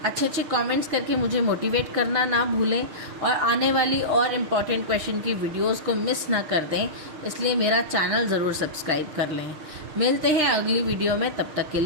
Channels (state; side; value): late; left; 6.5 ms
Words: अच्छे कमेंट्स करके मुझे मोटिवेट करना ना भूलें, और आने वाली और इम्पॉर्टेंट क्वेश्चन की वीडियोस को मिस ना कर दें, इसलिए मेरा चैनल ज़रूर सब्सक्राइब कर लें. मिलते हैं अगली वीडियो में, तब तक के